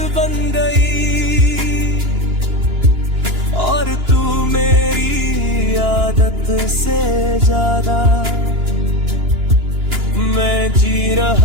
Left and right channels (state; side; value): late; left; 2.9 ms